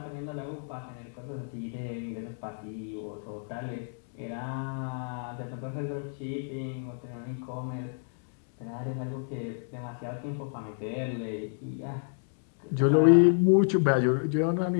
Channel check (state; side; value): silent; right; digital silence